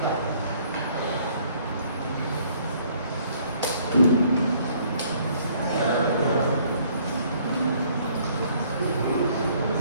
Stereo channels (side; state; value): both; inverted; correlation -0.61